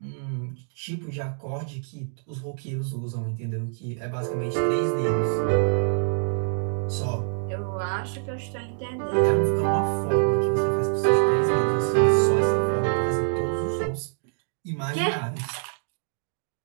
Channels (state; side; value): silent; left; digital silence